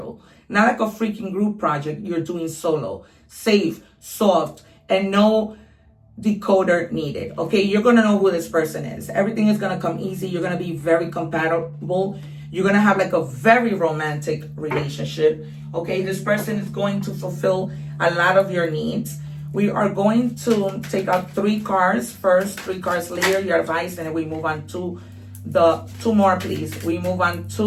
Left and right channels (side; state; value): both; identical; correlation 1.00